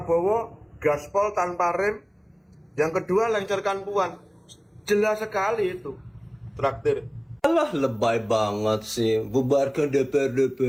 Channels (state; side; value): identical; both; correlation 1.00